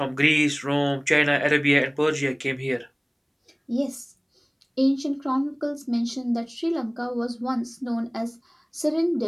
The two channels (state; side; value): identical; both; correlation 1.00